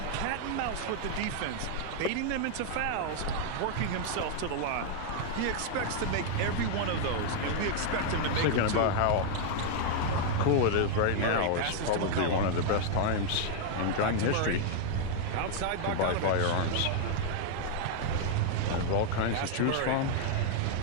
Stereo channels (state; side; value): different; both; correlation 0.00